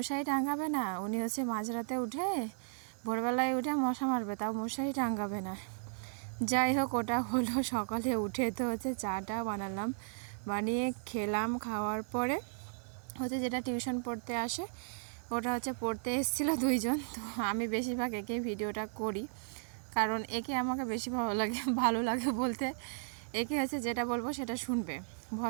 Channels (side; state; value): left; silent; digital silence